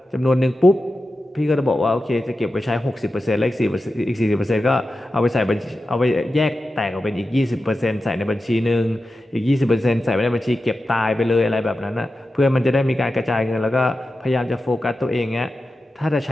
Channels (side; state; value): both; normal; correlation 0.92